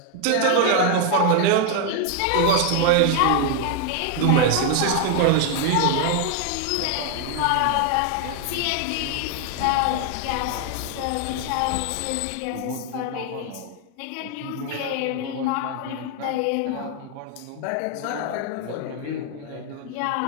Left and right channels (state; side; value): different; both; correlation 0.01